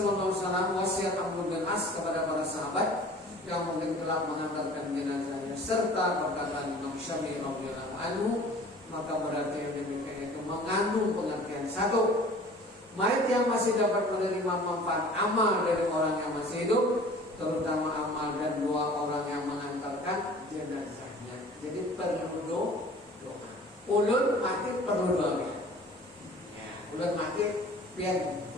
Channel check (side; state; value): both; normal; correlation 0.46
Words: Alaihi Wasallam wasiat Abdul bin As kepada para sahabat yang mungkin telah mengantarkan jenazahnya serta perkataan Imam Syafi'i radhiyallahu anhu, maka berarti yang demikian itu mengandung pengertian satu, mayat yang masih dapat menerima manfaat amal dari orang yang masih hidup, terutama amal dan doa orang yang mengantarkan jenazahnya. Jadi perlu doa. Ulun mati perlu doa. Ya, ulun mati biar